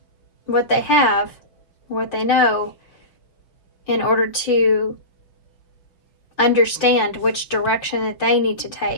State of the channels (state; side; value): late; right; 5.5 ms